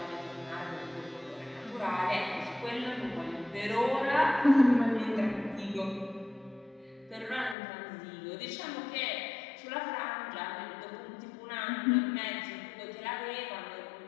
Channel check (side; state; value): right; drops out; at 7.6 s